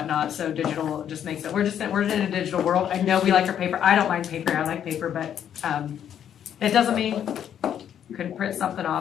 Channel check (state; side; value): quieter; right; 9.5 dB